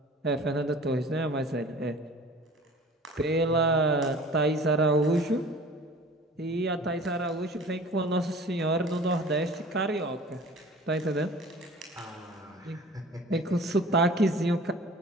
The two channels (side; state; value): both; normal; correlation 0.45